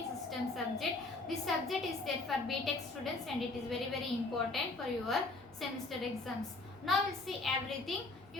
system subject. This subject is there for B.Tech students and it is very important for your semester exams. Now we'll see everything.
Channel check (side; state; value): right; quieter; 3.3 dB